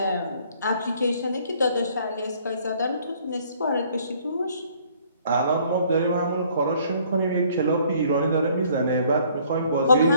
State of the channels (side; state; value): both; inverted; correlation -0.60